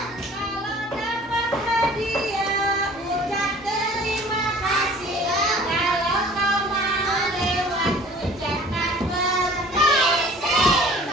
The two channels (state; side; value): normal; both; correlation 0.48